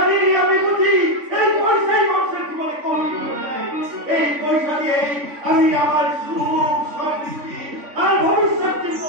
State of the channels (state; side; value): late; left; 3.5 ms